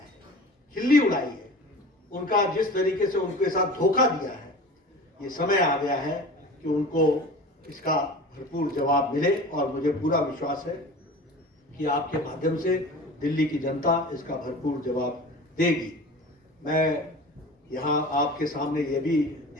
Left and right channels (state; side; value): normal; both; correlation 0.37